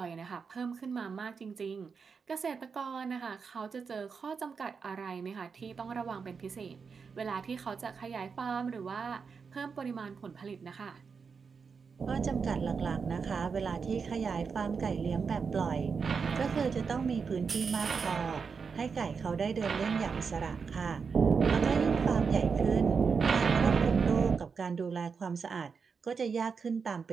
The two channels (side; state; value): left; quieter; 5.6 dB